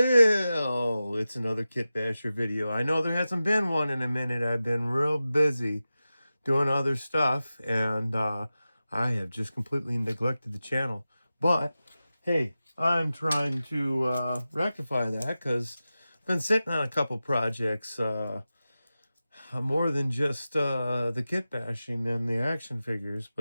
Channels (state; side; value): inverted; both; correlation -0.94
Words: it's another Kit Basher video. I know there hasn't been one in a minute. I've been real busy doing other stuff, and I have just completely neglected the channel. But, hey, I'm trying to rectify that because I've been sitting on a couple projects, more than just the kit bashing and the action figures,